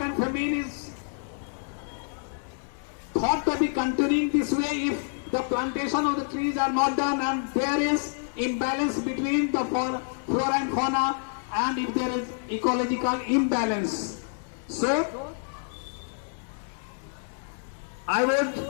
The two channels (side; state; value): right; silent; 57 dB below the other